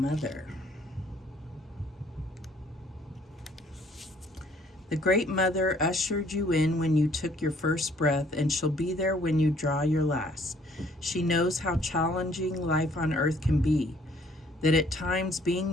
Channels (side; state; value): both; normal; correlation 0.61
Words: The Great Mother ushered you in when you took your first breath, and she'll be there when you draw your last. She knows how challenging life on earth can be, that at times